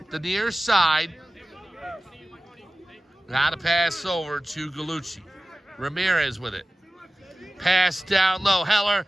the near side. Now to pass over to Galucci. Ramirez with it. Pass down low. Heller,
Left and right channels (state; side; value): normal; both; correlation 0.95